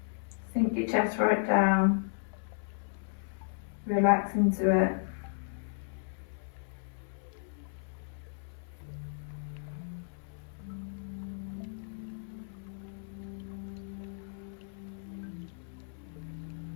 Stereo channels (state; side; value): silent; right; 55 dB below the other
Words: Sink your chest right down. Relax into it.